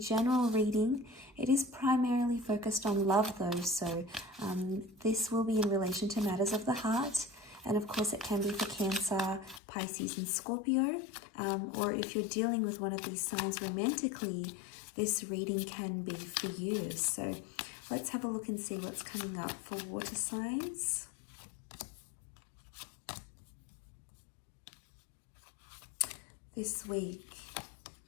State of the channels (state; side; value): drops out; right; at 9.6 s